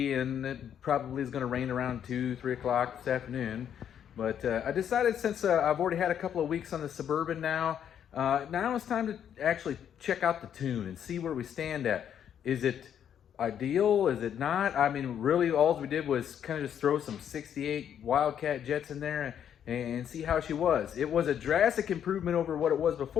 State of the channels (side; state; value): right; quieter; 9.1 dB